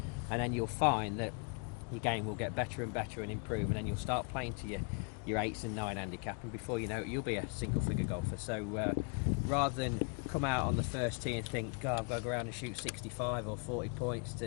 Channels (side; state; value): right; quieter; 35.9 dB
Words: and then you'll find that your game will get better and better and improve, and then you'll start playing to your 8s and 9 handicap, and before you know it, you'll be a single figure golfer. So rather than come out on the first tee and think, God, I've got to go around and shoot 65 or 40 points